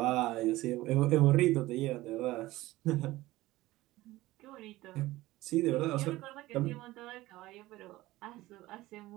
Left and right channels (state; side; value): quieter; left; 17.8 dB